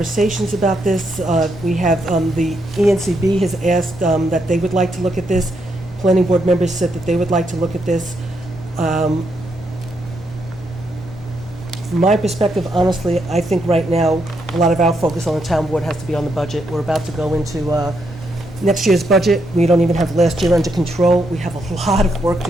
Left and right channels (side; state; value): both; normal; correlation 0.79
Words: about this. We have, the ENCB has asked that they would like to look at this. Planning board members said that they would like to look at this. From my perspective, honestly, I think right now, a lot of our focus on the town board has to be on the budget. We're about to go into next year's budget. We don't even have last year under control. We have a lot of work to